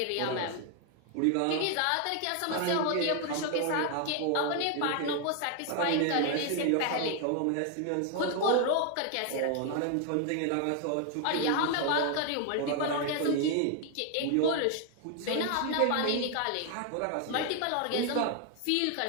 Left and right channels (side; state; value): both; different; correlation 0.00